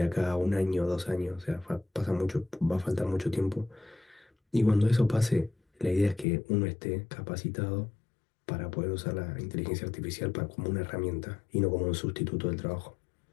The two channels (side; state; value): right; drops out; at 6.2 s